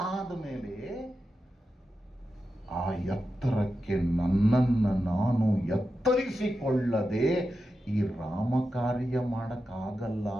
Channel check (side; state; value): both; normal; correlation 0.90